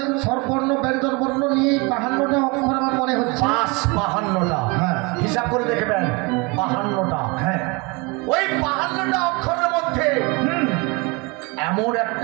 স্বরবর্ণ ব্যঞ্জন বর্ণ নিয়ে 52টা অক্ষর আমার মনে হচ্ছে। 52টা। হ্যাঁ। হিসাব করে দেখবেন 52টা। হ্যাঁ, ওই 52টা অক্ষরের মধ্যে এমন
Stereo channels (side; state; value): left; quieter; 28.0 dB